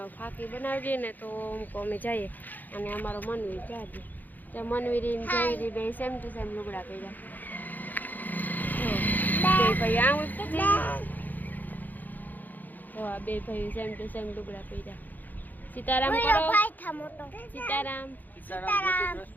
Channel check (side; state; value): right; late; 0.085 ms